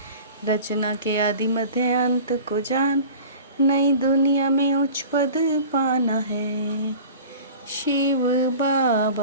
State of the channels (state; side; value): inverted; both; correlation -0.40